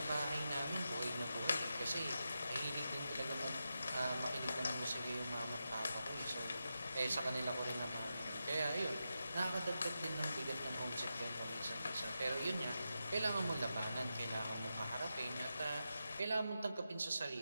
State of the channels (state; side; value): inverted; both; correlation -0.89